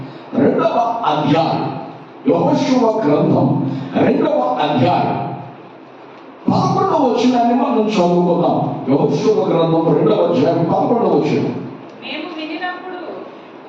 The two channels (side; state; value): both; identical; correlation 1.00